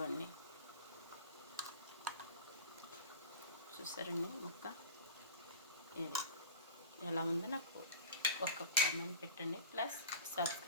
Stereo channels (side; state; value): both; inverted; correlation -0.34